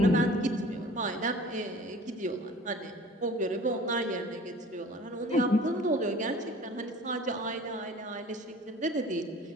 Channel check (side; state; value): both; normal; correlation 0.45